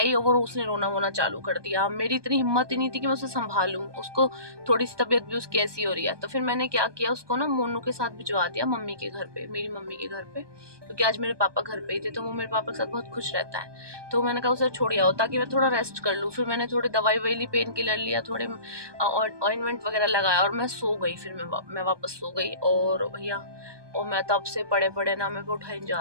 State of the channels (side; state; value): left; late; 1.2 ms